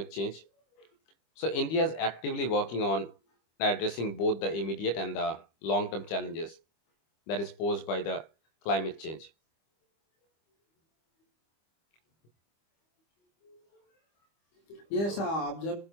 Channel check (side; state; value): right; late; 25 ms